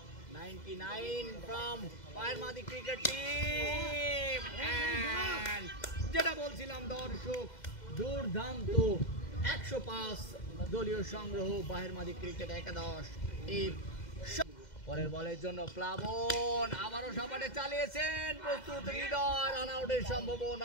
99 from বাহেরমাদি ক্রিকেট টিম। and যেটা বলছিলাম দর্শক, দুর্দান্ত 105 দলীয় সংগ্রহ বাহেরমাদি ক্রিকেট একাদশ টিম। পরের বলের জন্য প্লাবন আবারও সাপাটে চালিয়েছেন, প্রস্তুত হৃদয়, রান আউটের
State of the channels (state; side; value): late; right; 2.0 ms